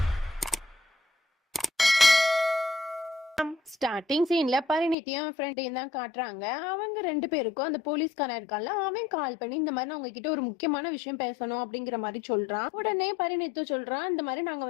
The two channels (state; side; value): drops out; right; at 5.0 s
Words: ஸ்டார்டிங் சீன்ல பரிணித்தியும் ஃப்ரெண்டையும் தான் காட்டுறாங்க. அவங்க ரெண்டு பேருக்கும் அந்த போலீஸ்காரன் இருக்கான்ல, அவன் கால் பண்ணி இந்த மாதிரி நான் உங்ககிட்ட ஒரு முக்கியமான விஷயம் பேசணும் அப்படிங்கிற மாதிரி சொல்றான். உடனே பரிணித்து சொல்றான், இந்த மாதிரி நாங்க